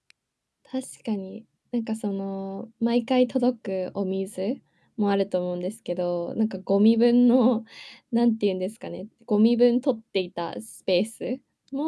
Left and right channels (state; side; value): identical; both; correlation 1.00